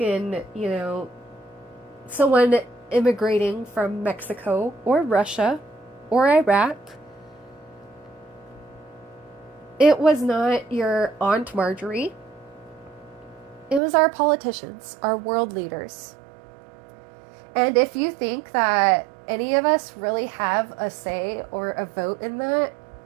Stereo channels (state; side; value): drops out; left; at 13.8 s